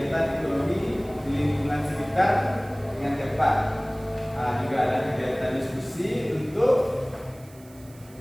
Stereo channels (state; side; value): noise; right; hiss, 25 dB below the sound